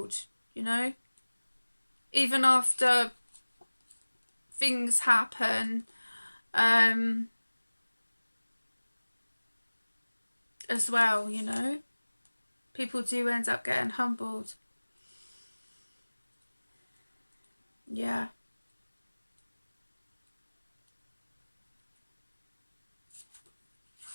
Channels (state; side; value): inverted; both; correlation -1.00